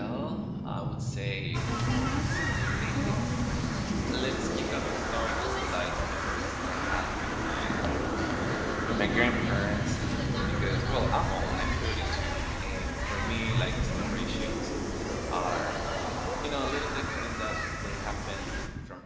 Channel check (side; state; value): both; identical; correlation 1.00